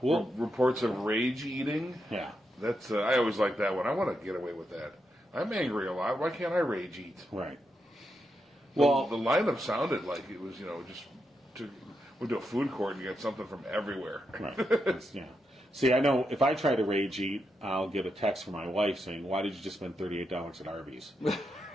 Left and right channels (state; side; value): normal; both; correlation 0.84